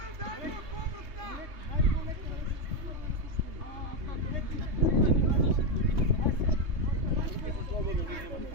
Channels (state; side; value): late; left; 3.3 ms